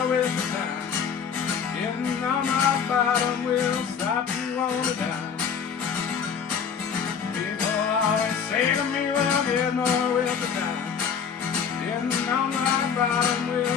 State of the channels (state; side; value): quieter; right; 6.9 dB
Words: with the time. Getting on my bottom will stop you on the dime. People always say to me, well, get more with the time. Getting on my bottom